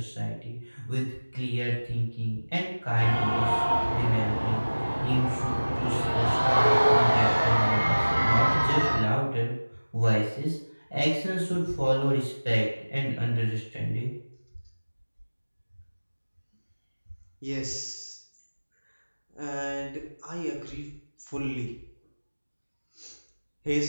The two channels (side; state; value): both; inverted; correlation -1.00